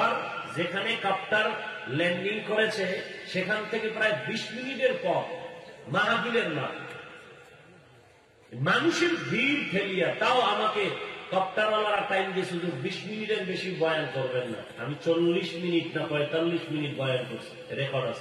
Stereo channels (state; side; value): identical; both; correlation 1.00